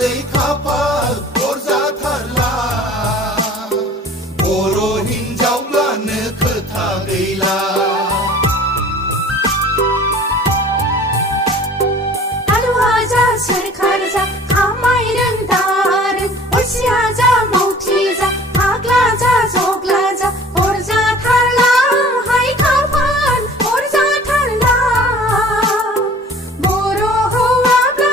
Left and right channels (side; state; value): both; normal; correlation 0.47